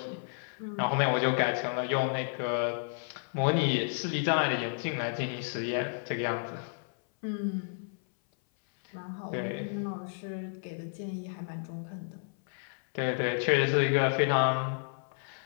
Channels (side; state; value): right; silent; 57 dB below the other